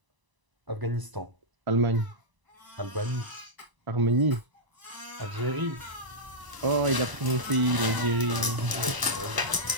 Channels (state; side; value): late; left; 1.0 ms